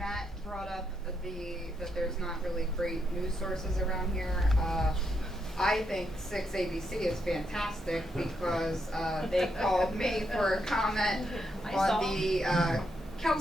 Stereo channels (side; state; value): both; normal; correlation 0.80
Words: brought up that there's not really great news sources around here. I think 6 ABC is fantastic because they called me for a comment on the